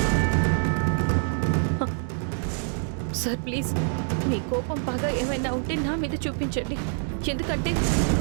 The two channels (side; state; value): left; silent; 61 dB below the other